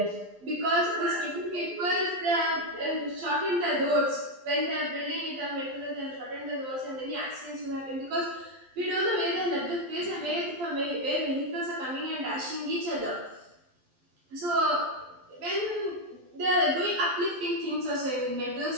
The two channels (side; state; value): left; late; 12 ms